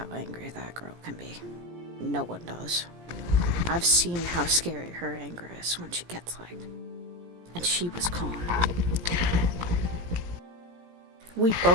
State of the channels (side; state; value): left; late; 17 ms